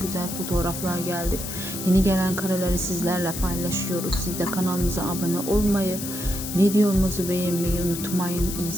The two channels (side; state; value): left; noise; hiss, 7 dB below the sound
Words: güzel fotoğraflar geldi. Yeni gelen kareleri sizlerle paylaşıyoruz. Siz de kanalımıza abone olmayı, videomuzu beğenmeyi unutmayın. İyi